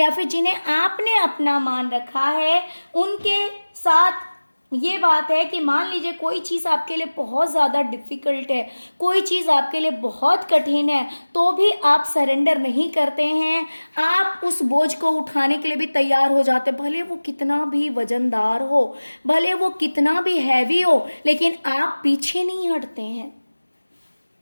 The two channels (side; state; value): both; inverted; correlation -1.00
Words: फिर जिन्हें आपने अपना मान रखा है, उनके साथ ये बात है कि मान लीजिए कोई चीज़ आपके लिए बहुत ज़्यादा डिफ़िकल्ट है, कोई चीज़ आपके लिए बहुत कठिन है, तो भी आप सरेंडर नहीं करते हैं। आप उस बोझ को उठाने के लिए भी तैयार हो जाते हैं, भले वो कितना भी वजनदार हो, भले वो कितना भी हैवी हो, लेकिन आप पीछे नहीं हटते हैं।